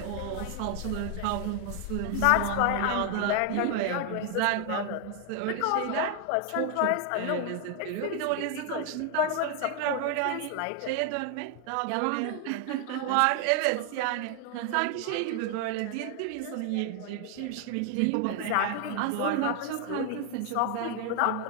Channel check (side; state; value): both; different; correlation 0.00